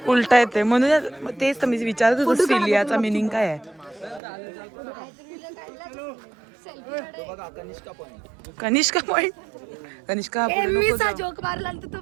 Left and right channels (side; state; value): left; drops out; at 4.2 s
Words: उलटा येते म्हणून तेच तर मी विचारत होतो सिलियाचा मिनिंग काय आहे. कनिष्का पॉइंट. कनिष्का जोक मारला तर